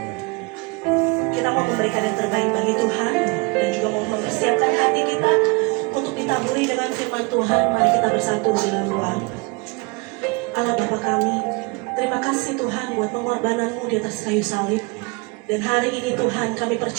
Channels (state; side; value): quieter; left; 28.0 dB